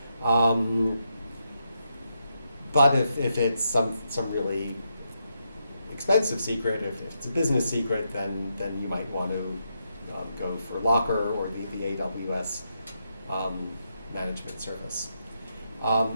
But if it's some really expensive secret, if it's a business secret, then you might want to go for Locker or the AWS management service.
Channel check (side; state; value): both; inverted; correlation -0.83